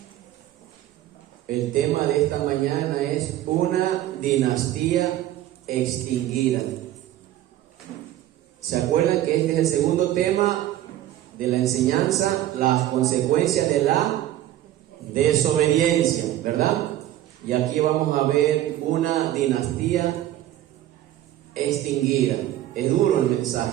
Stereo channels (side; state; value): left; quieter; 13.4 dB